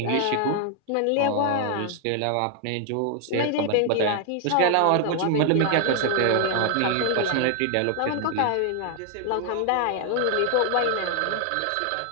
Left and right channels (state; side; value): different; both; correlation 0.00